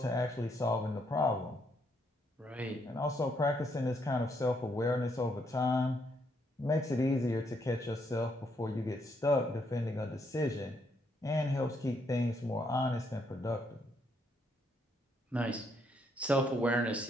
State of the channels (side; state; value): both; normal; correlation 0.74